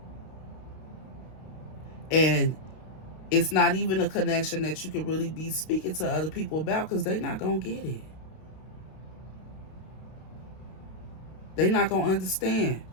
And it's not even a connection that you can really be speaking to other people about because they're not going to get it. They're not going to understand.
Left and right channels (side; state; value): right; late; 32 ms